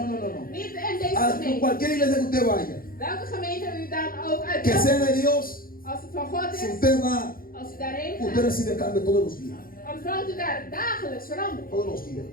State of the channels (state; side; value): late; right; 0.42 ms